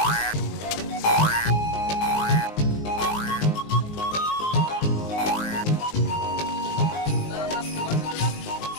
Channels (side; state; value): right; late; 19 ms